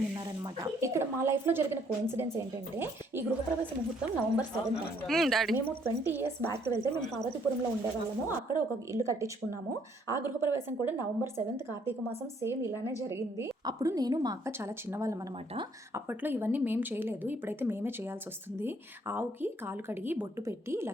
ఉన్నారనమాట. ఇక్కడ మా లైఫ్ లో జరిగిన కోఇన్సిడెన్స్ ఏంటంటే, ఈ గృహప్రవేశ ముహూర్తం November 7th. మేము 20 years బ్యాక్ వెళ్తే మేము పార్వతీపురంలో ఉండేవాళ్ళము. అక్కడ ఒక ఇల్లు కట్టించుకున్నాము. ఆ గృహప్రవేశం కూడా November 7th కార్తీక మాసం సేమ్ ఇలానే జరిగింది. అప్పుడు నేను మా అక్క చాలా చిన్నవాళ్ళం అనమాట. అప్పట్లో ఇవన్నీ మేము చేయలేదు, ఇప్పుడైతే మేమే చేయాల్సి వస్తుంది. ఆవుకి కాలు కడిగి బొట్టు పెట్టి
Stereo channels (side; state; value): both; normal; correlation 0.66